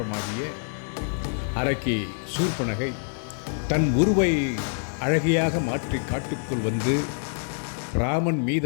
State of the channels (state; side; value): silent; right; 59 dB below the other